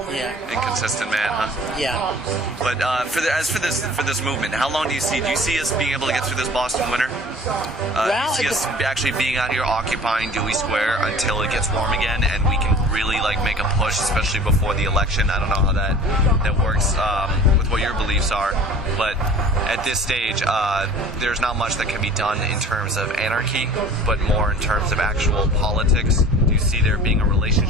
Yeah. Inconsistent man, huh? Yeah. But for this movement, how long do you see us being able to get through this Boston winter? Do you see us actually being out here occupying Dewey Square until it gets warm again, and we can really make a push, especially before the election? I don't know how that works with what your beliefs are, but at this stage, there's not much that can be done in terms of anarchy, but more in terms of actual politics. Do you see there being a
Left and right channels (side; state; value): both; normal; correlation 0.45